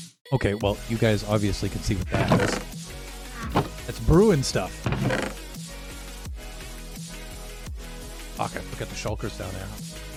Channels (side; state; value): both; identical; correlation 1.00